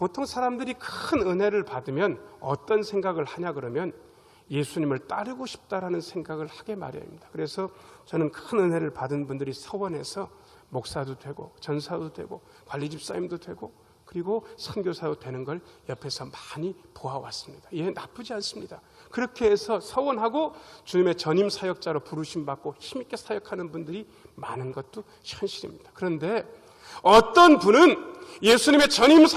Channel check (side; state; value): both; identical; correlation 1.00